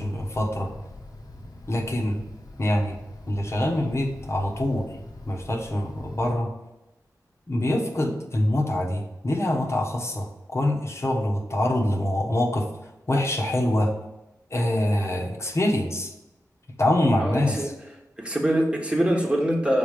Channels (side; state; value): both; normal; correlation 0.90